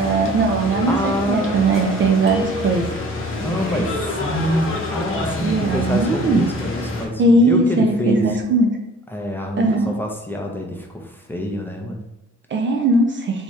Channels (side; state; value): both; normal; correlation 0.49